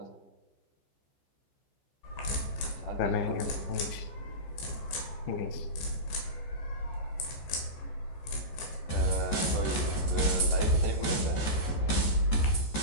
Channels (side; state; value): right; late; 14 ms